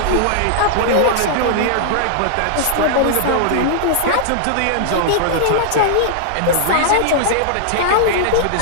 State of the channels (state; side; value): different; both; correlation -0.01